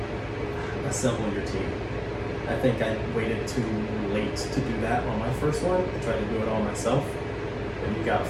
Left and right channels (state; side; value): identical; both; correlation 1.00